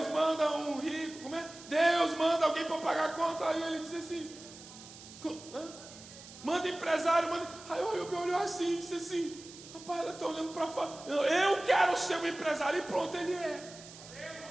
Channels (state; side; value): noise; right; hiss, 17 dB below the sound